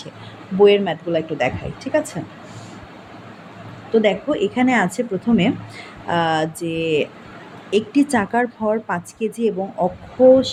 বইয়ের ম্যাথগুলো একটু দেখাই, ঠিক আছে? তো দেখো এখানে আছে প্রথমে যে একটি চাকার ভর 5 কেজি এবং অক্ষ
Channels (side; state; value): both; identical; correlation 1.00